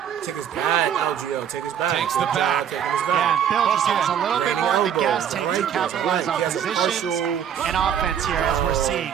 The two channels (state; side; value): quieter; left; 8.9 dB